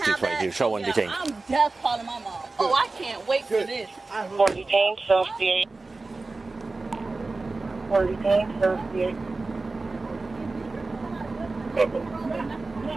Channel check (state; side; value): quieter; left; 3.5 dB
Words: Show one detained. I'm just calling my mom. Oh, I can't wait for this. For detained, associate. For detained, associate.